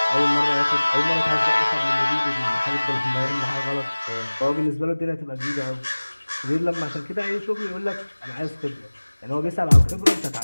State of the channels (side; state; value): both; inverted; correlation -1.00